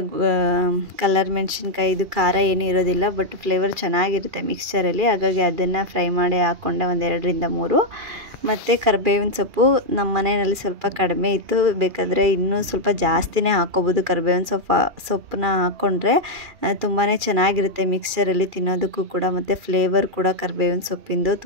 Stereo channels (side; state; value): left; late; 2.4 ms